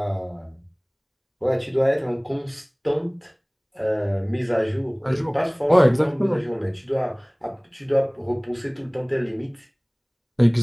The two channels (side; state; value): both; identical; correlation 1.00